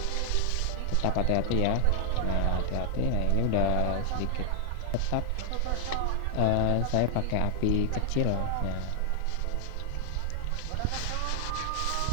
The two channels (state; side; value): different; both; correlation 0.00